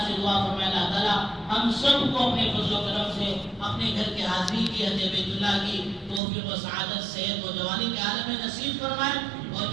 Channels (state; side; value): drops out; left; at 6.2 s